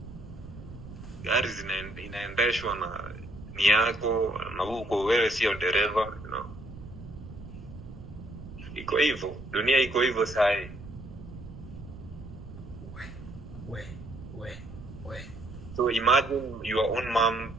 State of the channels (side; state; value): right; noise; rumble, 14 dB below the sound